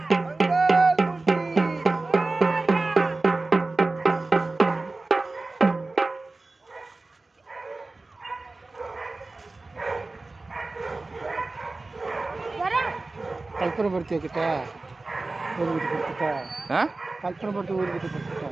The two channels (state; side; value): quieter; left; 3.3 dB